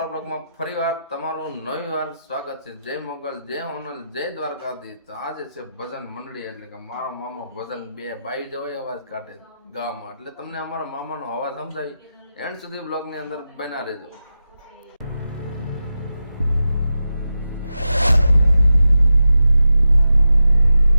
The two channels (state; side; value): inverted; both; correlation -0.89